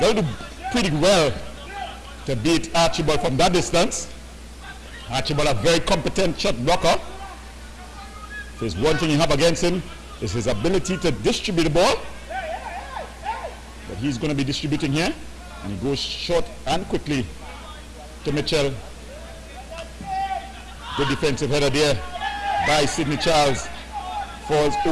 to do pretty well to beat Archibald from that distance. Archibald, a very competent shot blocker. If there's one thing you have against him, is his ability to distribute the ball. But he's going to be distributing here. And he goes short and quickly to Mitchell. Good defensive header there by Sidney Charles. Falls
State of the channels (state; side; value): identical; both; correlation 1.00